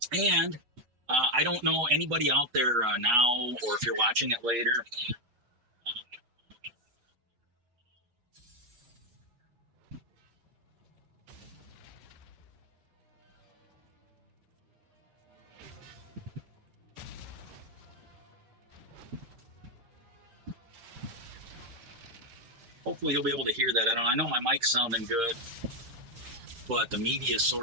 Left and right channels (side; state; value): left; late; 8.4 ms